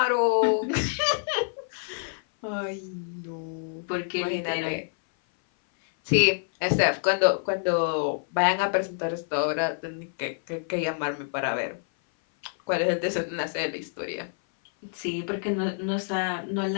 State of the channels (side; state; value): right; silent; 58 dB below the other